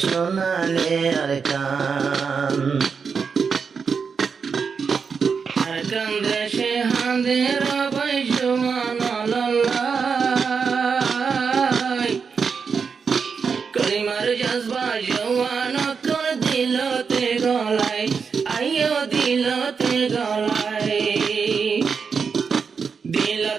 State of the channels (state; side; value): quieter; left; 5.8 dB